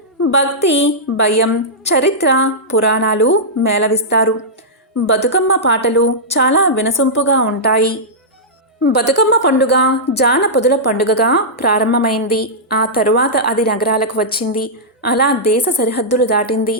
భక్తి, భయం, చరిత్ర, పురాణాలు మేళవిస్తారు. బతుకమ్మ పాటలు చాలా వినసొంపుగా ఉంటాయి. బతుకమ్మ పండుగ జానపదుల పండుగగా ప్రారంభమైంది. ఆ తరువాత అది నగరాలకు వచ్చింది. అలా దేశ సరిహద్దులు దాటింది,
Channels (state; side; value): normal; both; correlation -0.12